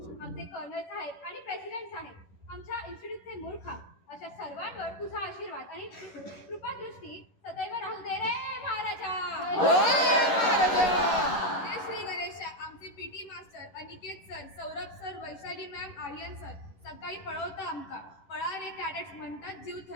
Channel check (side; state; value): right; late; 11 ms